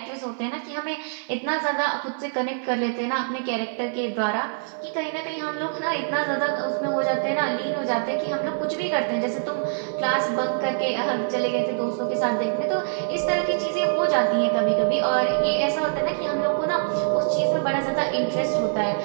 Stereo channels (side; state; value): left; silent; 56 dB below the other